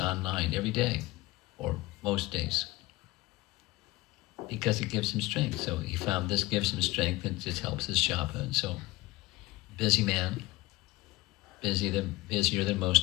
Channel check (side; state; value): right; quieter; 19.9 dB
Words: every day, or most days, because it gives him strength. So he found this gives him strength, and it helps his japa. And so, busy man, busier than